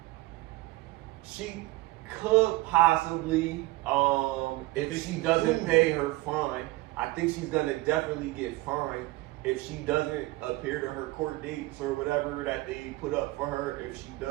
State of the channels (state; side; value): quieter; left; 20.3 dB